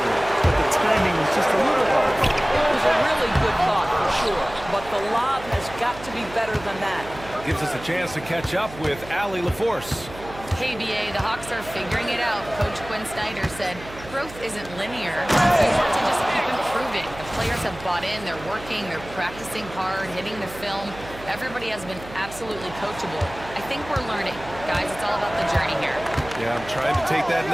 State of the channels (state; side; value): noise; right; hum, 15 dB below the sound